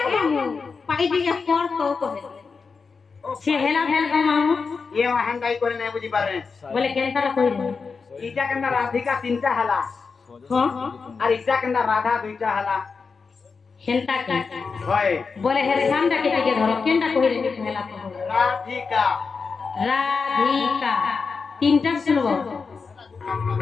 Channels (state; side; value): quieter; right; 5.0 dB